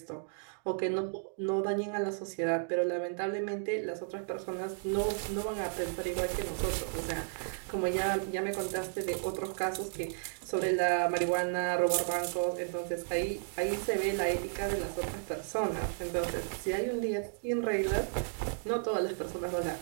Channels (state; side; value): silent; left; digital silence